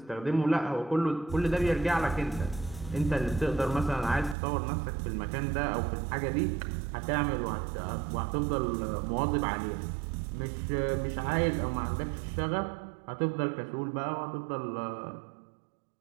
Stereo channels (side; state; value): left; drops out; at 4.4 s